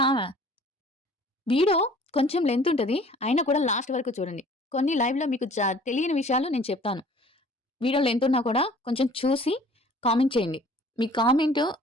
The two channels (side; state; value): both; normal; correlation 0.51